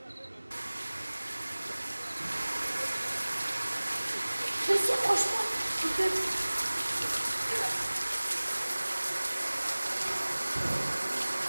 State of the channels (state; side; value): inverted; both; correlation -1.00